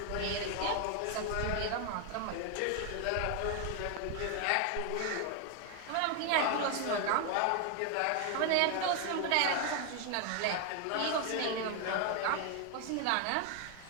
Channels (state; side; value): different; both; correlation 0.00